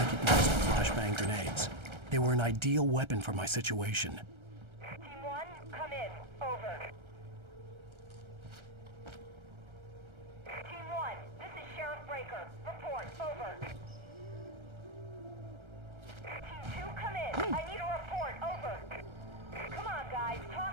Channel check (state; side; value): late; left; 1.3 ms